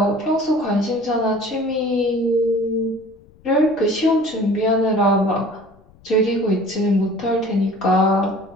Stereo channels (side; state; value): left; noise; rumble, 28 dB below the sound